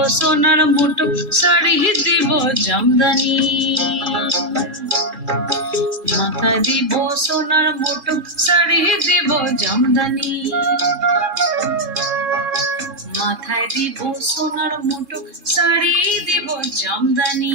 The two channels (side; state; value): left; late; 3.7 ms